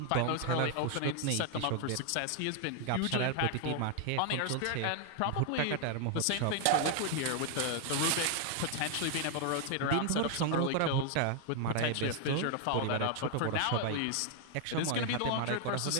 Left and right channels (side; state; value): both; different; correlation 0.00